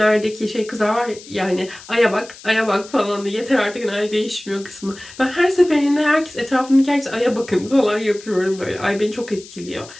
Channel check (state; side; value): noise; left; hiss, 18 dB below the sound